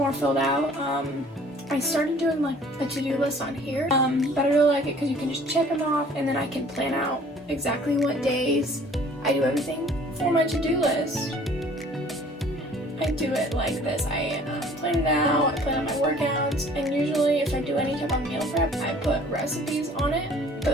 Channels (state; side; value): normal; both; correlation 0.53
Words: filled out. I started doing like a to-do list on here, but I really like it because you can just check them off and then I can plan out exactly what days I do everything for my to-do list. I do it like this. I plan it out, I plan out my workouts, and usually if I do any type of meal prep, I put recipes on it. But